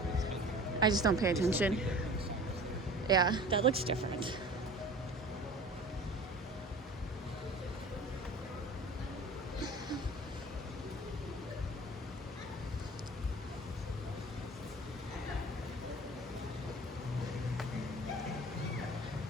I just don't pay attention? Yeah, that looks different.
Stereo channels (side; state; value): both; normal; correlation 0.42